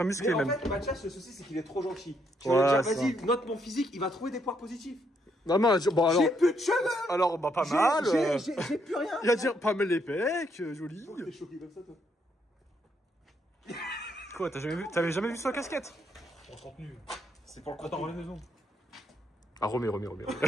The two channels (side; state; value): both; normal; correlation 0.74